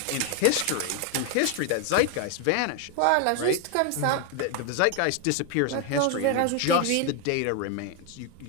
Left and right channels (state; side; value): different; both; correlation 0.01